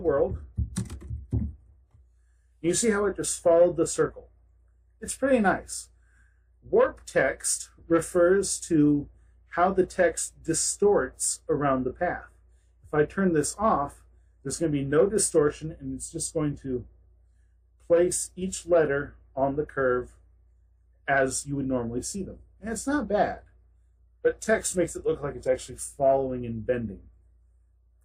You see how it just followed the circle. It's pretty nice. Warp text refers to how the text distorts around the path. If I turn this off, there's going to be no distortion, and it's just going to place each letter on the curve as you would normally see them. And it's not bad, but text makes it look like it's actually following and bending.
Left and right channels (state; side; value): identical; both; correlation 1.00